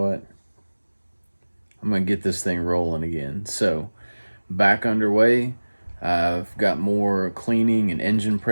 I'm going to get this thing rolling again. So, back underway. I've got more cleaning and engine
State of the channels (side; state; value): both; inverted; correlation -1.00